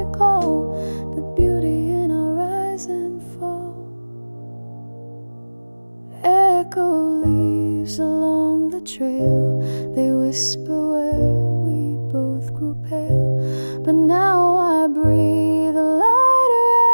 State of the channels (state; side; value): inverted; both; correlation -1.00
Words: recall the beauty in our rise and fall. Echo leaves along the trail, they whisper where we both grew pale. But now I breathe a lighter